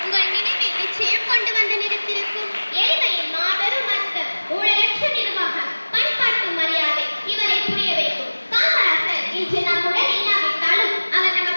உங்கள் நினைவில் நிச்சயம் கொண்டு வந்து நிறுத்திருக்கும். ஏழ்மையின் மாபெரும் அர்த்தம், ஊழலற்ற நிர்வாகம், பண்பாட்டு மரியாதை இவரை புரிய வைக்கும். காமராஜர் இன்று நம்முடன் இல்லாவிட்டாலும் அவர்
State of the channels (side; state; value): both; inverted; correlation -1.00